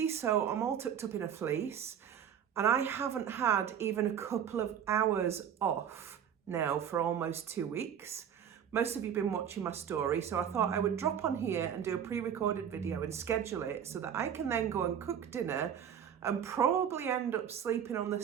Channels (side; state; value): left; quieter; 8.7 dB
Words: so I'm all tucked up in a fleece. And I haven't had even a couple of hours off now for almost 2 weeks. Most of you have been watching my story, so I thought I would drop on here and do a pre-recorded video and schedule it so that I can then go and cook dinner and probably end up sleeping on the